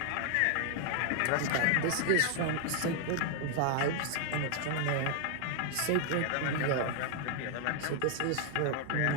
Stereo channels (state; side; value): different; both; correlation 0.00